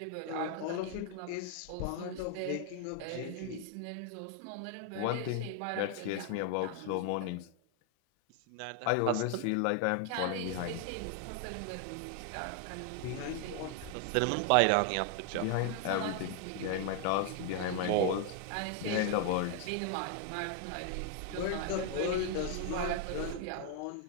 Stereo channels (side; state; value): both; different; correlation 0.00